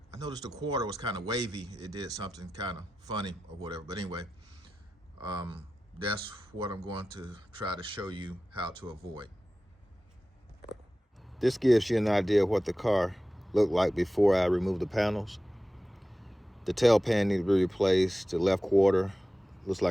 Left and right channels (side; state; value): both; normal; correlation 0.94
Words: I noticed the quarter was kind of wavy. It did something kind of funny or whatever. But anyway, that's what I'm going to try to show you how to avoid. This gives you an idea of what the car looked like before I removed the panels. The tail pan needed to be replaced. The left quarter looks